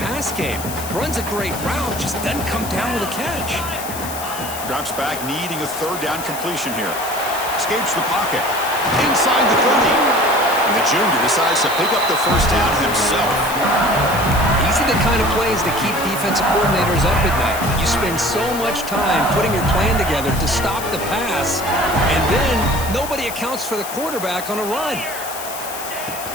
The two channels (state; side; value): noise; left; hiss, 10 dB below the sound